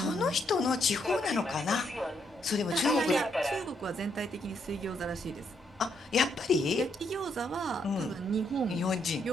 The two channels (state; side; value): normal; both; correlation 0.75